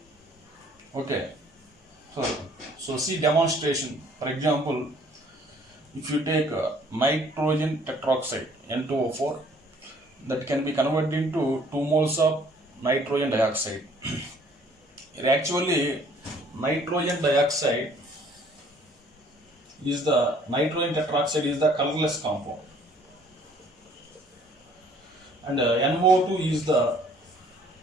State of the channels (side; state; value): both; normal; correlation 0.58